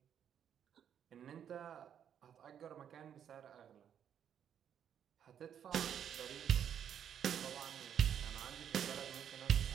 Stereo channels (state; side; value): quieter; left; 9.0 dB